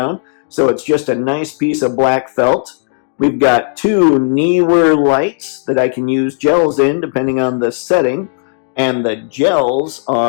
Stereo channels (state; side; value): silent; right; digital silence